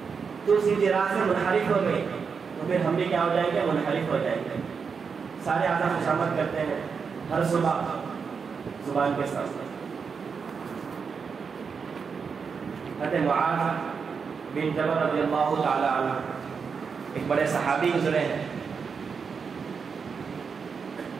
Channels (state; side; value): quieter; left; 5.8 dB